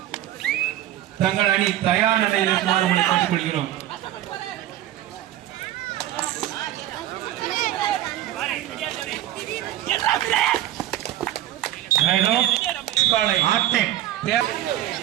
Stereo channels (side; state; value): left; quieter; 13.3 dB